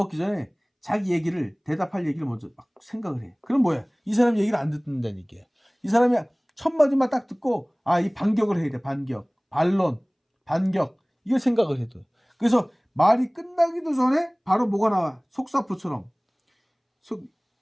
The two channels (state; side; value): identical; both; correlation 1.00